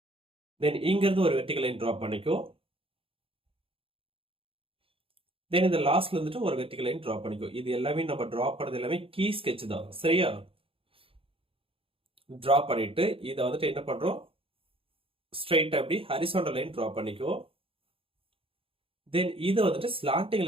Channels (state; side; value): late; left; 0.27 ms